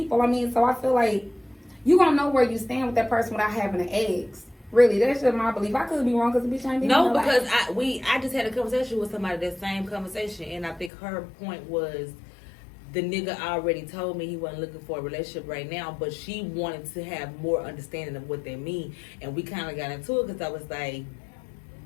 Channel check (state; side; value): drops out; right; at 10.9 s